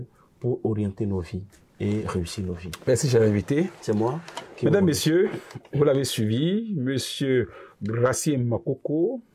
pour orienter nos vies et réussir nos vies. Merci, cher invité. C'est moi. Mesdames, Messieurs, vous l'avez suivi. Monsieur Gracie Makoko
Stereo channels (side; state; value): both; identical; correlation 1.00